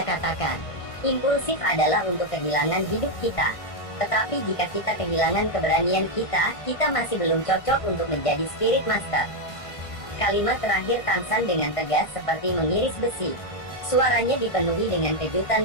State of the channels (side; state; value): right; late; 1.5 ms